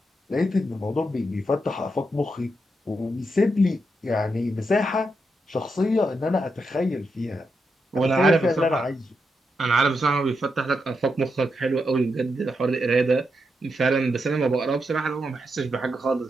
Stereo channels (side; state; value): both; normal; correlation 0.84